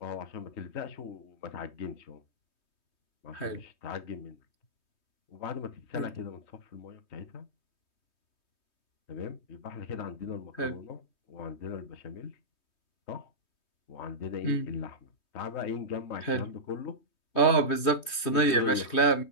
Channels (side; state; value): right; late; 3.2 ms